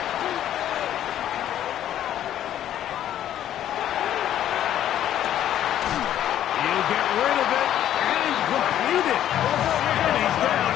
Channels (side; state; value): right; quieter; 11.4 dB